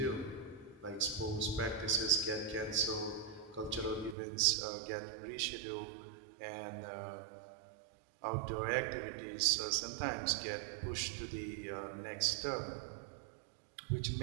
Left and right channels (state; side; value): drops out; left; at 4.2 s